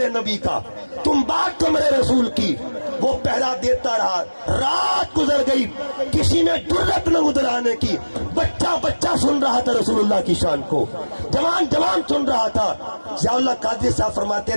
نبی کا، تم بات کرو میرے رسول کی. وہ پہرا دیتا رہا. رات گزر گئی، کسی میں جرأت نہ ادھرانے کی. بچہ بچہ سن رہا تھا رسول اللہ کی شان کو، جوان جوان سن رہا تھا. ضیاء اللہ قادری صاحب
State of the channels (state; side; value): inverted; both; correlation -1.00